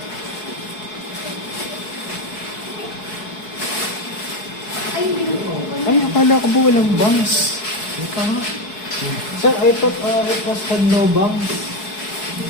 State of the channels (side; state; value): right; late; 4.7 ms